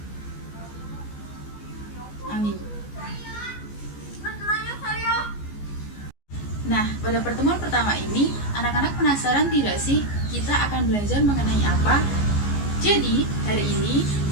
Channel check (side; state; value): right; late; 14 ms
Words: Amin. Nah, pada pertemuan pertama ini, anak-anak penasaran tidak sih kita akan belajar mengenai apa? Jadi, hari ini